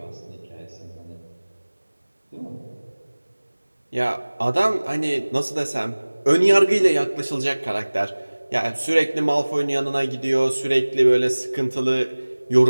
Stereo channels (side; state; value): both; inverted; correlation -1.00